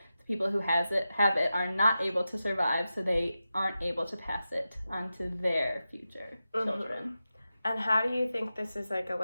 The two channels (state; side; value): inverted; both; correlation -0.92